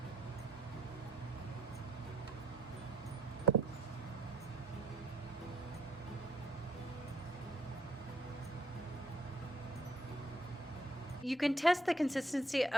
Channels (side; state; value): both; normal; correlation 0.66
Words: You can test the consistency